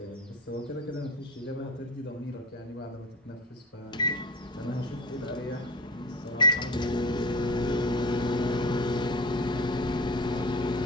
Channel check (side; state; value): both; normal; correlation 0.33